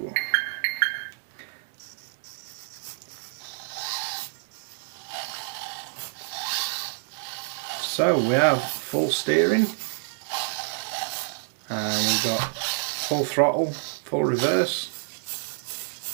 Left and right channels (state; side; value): silent; left; digital silence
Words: So we have full steering, and we've got full throttle, full reverse,